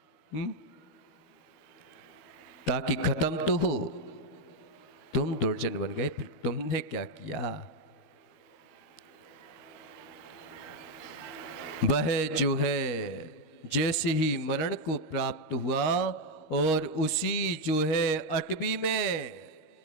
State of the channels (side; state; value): right; late; 13 ms